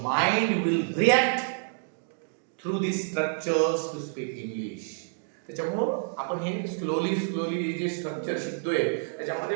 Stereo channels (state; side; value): silent; left; digital silence